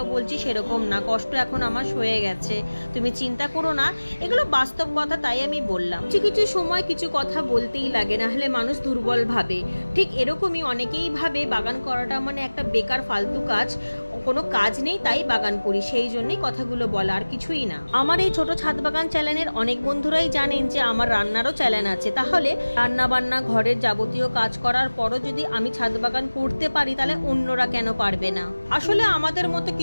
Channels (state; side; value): inverted; both; correlation -1.00